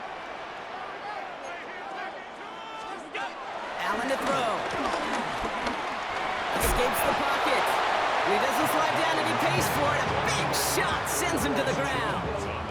Allen to throw. Escapes the pocket. He doesn't slide down and he pays for it. A big shot sends him to the ground.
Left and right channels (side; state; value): both; identical; correlation 1.00